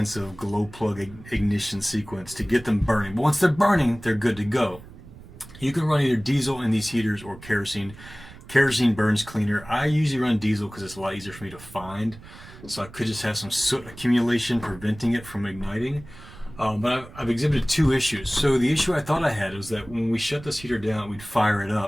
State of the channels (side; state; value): right; noise; rumble, 18 dB below the sound